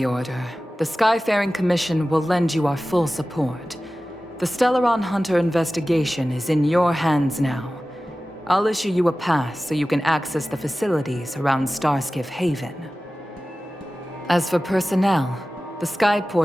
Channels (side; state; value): both; normal; correlation 0.96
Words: order, the Skyfaring Commission will lend you our full support. The Stellaron Hunter investigation is in your hands now. I'll issue you a pass so you can access the facilities around Starskiff Haven. As for personnel, the